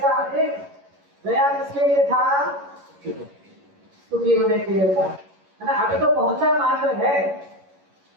एक गया किसके लिए था? सुखी होने के लिए था, है ना। अभी तो पहुंचा मात्र है,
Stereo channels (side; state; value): left; late; 11 ms